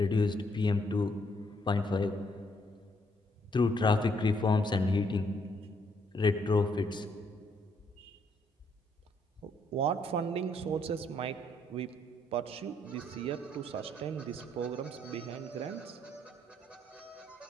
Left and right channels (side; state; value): both; normal; correlation 0.71